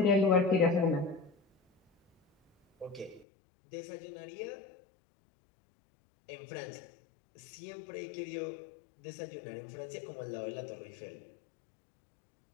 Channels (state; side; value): drops out; right; at 3.2 s